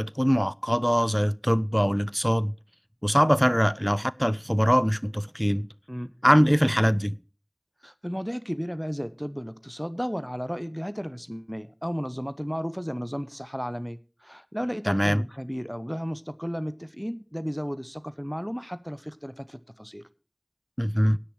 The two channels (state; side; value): identical; both; correlation 1.00